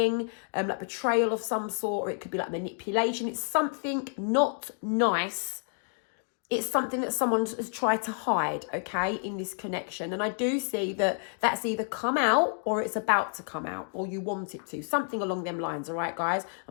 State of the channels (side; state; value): right; silent; 57 dB below the other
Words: of some sort, or it could be like manipulation. It's something not nice. It's something that someone has tried to hide, okay, in this connection. And I do see that that's either come out or it's about to come out, or you want it to. Something along them lines, all right, guys?